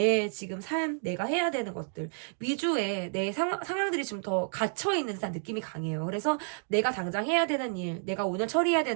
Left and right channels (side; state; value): left; silent; 58 dB below the other